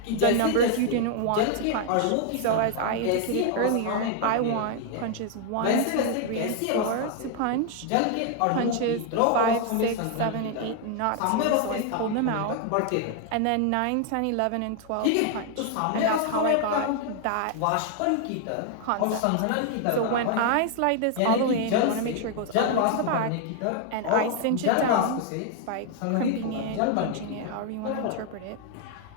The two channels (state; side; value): different; both; correlation 0.00